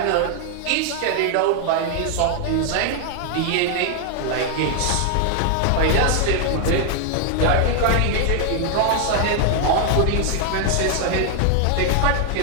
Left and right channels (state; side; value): different; both; correlation 0.00